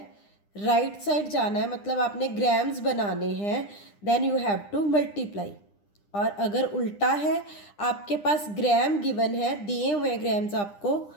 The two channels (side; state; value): right; late; 9.9 ms